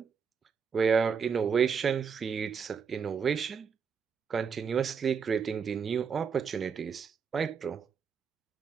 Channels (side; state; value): left; quieter; 6.4 dB